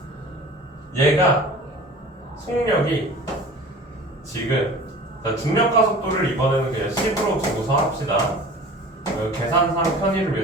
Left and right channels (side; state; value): both; normal; correlation 0.42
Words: 얘가 속력이 지금 자, 중력과 속도를 이번에는 그냥 10으로 두고서 합시다. 계산상 편의를